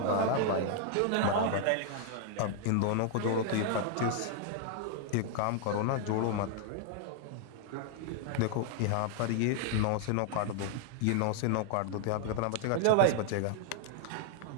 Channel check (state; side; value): different; both; correlation 0.00